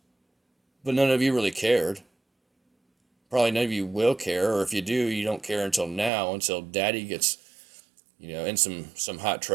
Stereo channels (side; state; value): left; drops out; at 6.1 s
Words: But none of you really cared. Probably none of you will care, or if you do, you don't care until now, until daddy gets, in some hot